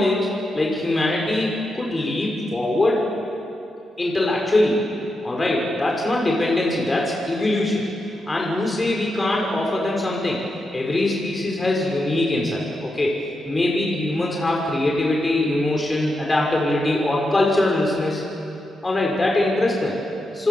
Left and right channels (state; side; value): normal; both; correlation 0.86